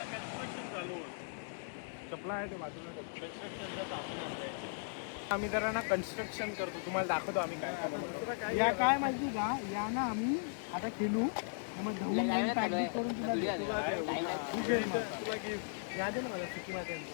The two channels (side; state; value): right; silent; 53 dB below the other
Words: चालू चपला आहे ते बाजूला. आम्ही जरा ना कन्स्ट्रक्शन करतो. तुम्हाला दाखवतो आम्ही काय करतो. या काय माहिती का, या ना आम्ही आता खेळू. मग धवून पॅकेज करून तुला या दे ना मला सुकी माहिती.